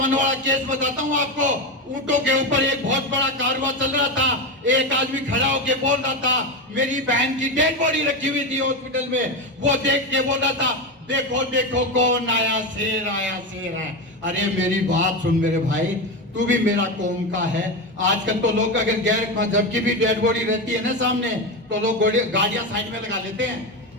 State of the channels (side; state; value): both; normal; correlation 0.16